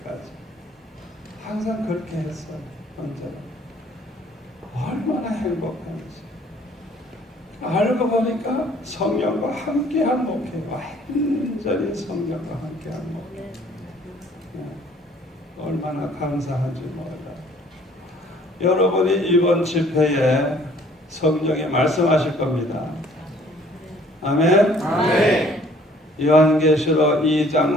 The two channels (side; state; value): both; normal; correlation 0.57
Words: 항상 그렇게 했어요. 언제나 얼마나 행복한지. 알고 보니까 성령과 함께한 목회, 완전히 성령과 함께한 목회. 얼마나 감사한지 몰라요. 여러분이 이번 집회에 성령이 말씀하실 겁니다. 아멘. 아멘. 요한계시록